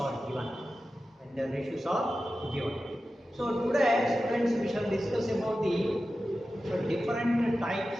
given. When their ratios are given. So today, students, we shall discuss about the different types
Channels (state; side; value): normal; both; correlation 0.93